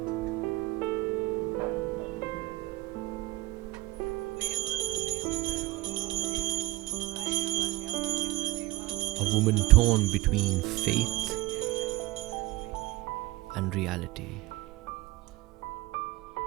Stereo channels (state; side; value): quieter; left; 19.6 dB